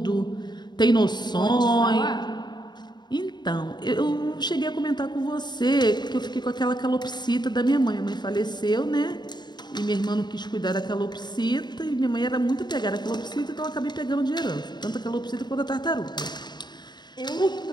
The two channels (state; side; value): late; right; 0.21 ms